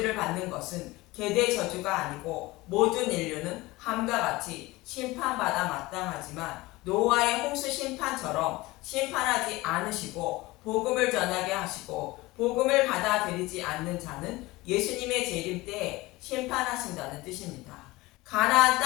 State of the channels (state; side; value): quieter; right; 20.6 dB